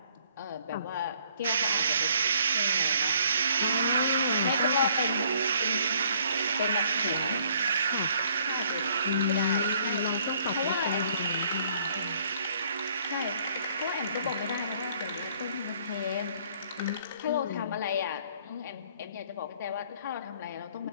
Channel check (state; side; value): inverted; both; correlation -0.63